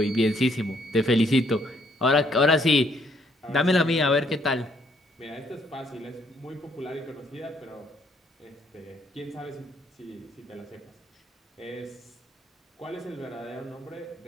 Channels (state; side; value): normal; both; correlation 0.68